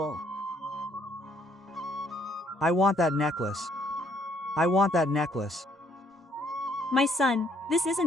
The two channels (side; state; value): both; normal; correlation 0.67